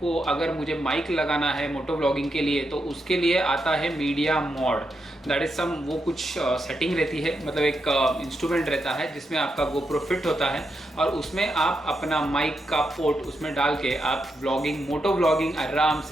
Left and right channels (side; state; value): both; normal; correlation 0.84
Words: अगर मुझे माइक लगाना है मोटो ब्लॉगिंग के लिए तो उसके लिए आता है media mode. That is some वो कुछ सेटिंग रहती है, मतलब एक इंस्ट्रूमेंट रहता है जिसमें आपका GoPro फिट होता है और उसमें आप अपना माइक का पोर्ट उसमें डाल के आप ब्लॉगिंग मोटो ब्लॉगिंग आराम